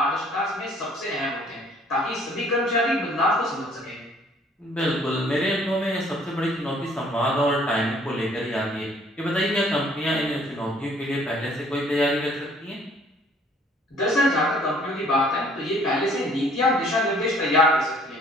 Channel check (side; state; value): both; normal; correlation 0.58